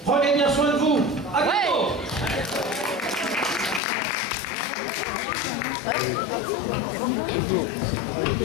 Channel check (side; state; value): right; drops out; at 3.8 s